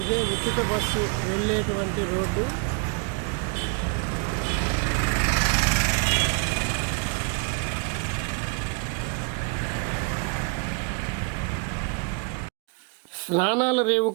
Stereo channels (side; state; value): left; quieter; 36.6 dB